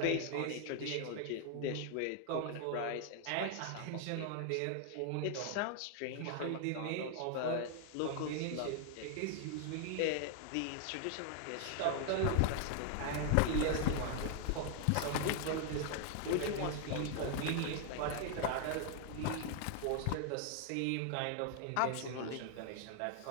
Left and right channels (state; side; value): different; both; correlation 0.00